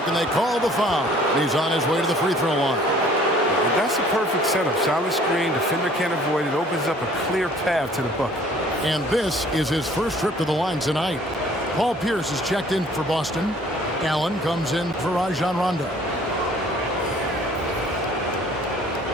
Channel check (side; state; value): both; normal; correlation 0.55